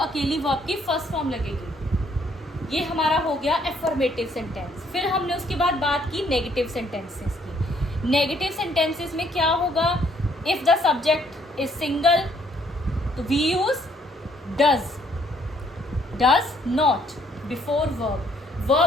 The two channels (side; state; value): both; normal; correlation 0.66